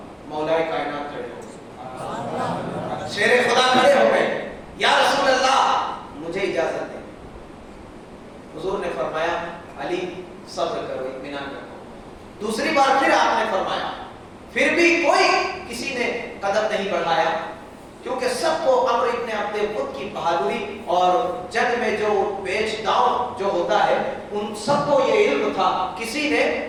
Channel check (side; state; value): both; identical; correlation 1.00